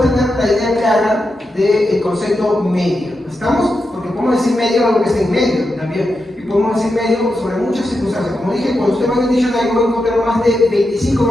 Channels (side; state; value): both; normal; correlation 0.87